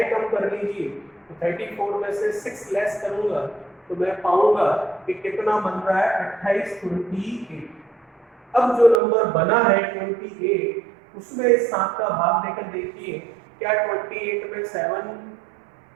कम कर लीजिए, तो 34 में से 6 लेस करूंगा तो मैं पाऊंगा कि कितना बन रहा है 28, 28। अब जो नंबर बना है 28, उसमें इस 7 का भाग देकर देखिए, क्या 28 में 7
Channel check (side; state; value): left; drops out; at 9.0 s